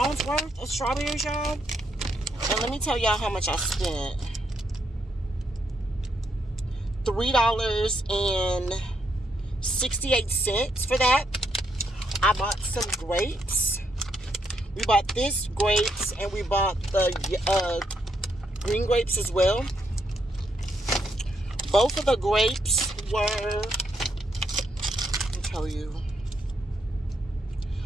worth of strawberries, y'all. And let me tell y'all how much I spent. $3.68 for that. I bought some grapes. We bought this grapes and we bought the green grapes as well. Both of the grapes were, let me tell you.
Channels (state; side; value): normal; both; correlation 0.77